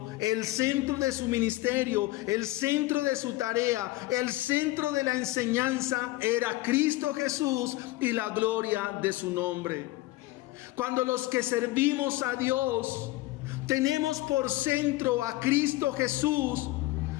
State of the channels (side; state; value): right; quieter; 18.7 dB